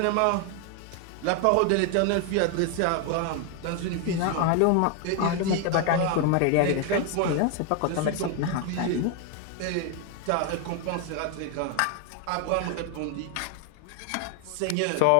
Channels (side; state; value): both; different; correlation 0.01